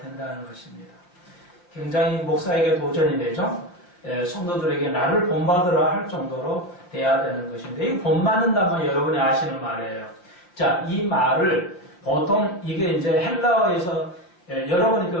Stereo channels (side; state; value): right; late; 5.6 ms